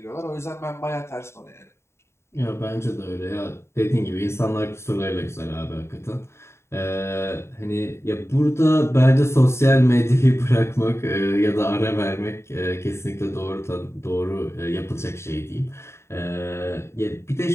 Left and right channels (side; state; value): right; late; 0.13 ms